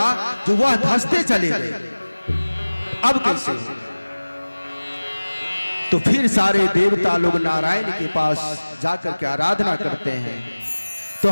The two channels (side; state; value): both; inverted; correlation -1.00